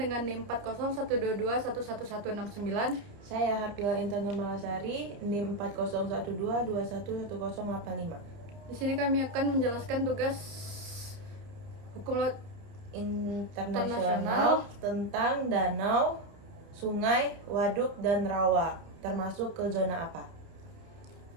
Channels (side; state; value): left; late; 30 ms